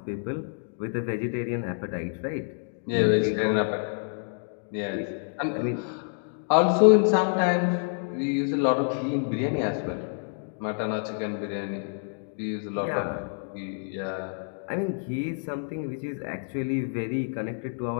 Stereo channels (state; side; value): silent; right; digital silence